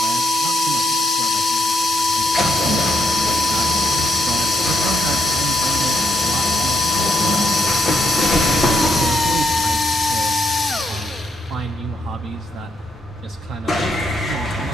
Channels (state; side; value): normal; both; correlation 0.77